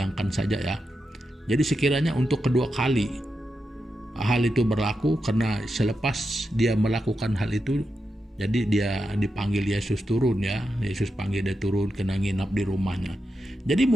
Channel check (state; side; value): normal; both; correlation 0.87